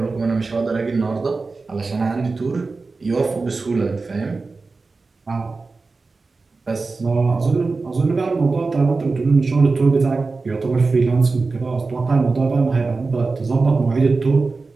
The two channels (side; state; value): left; quieter; 3.9 dB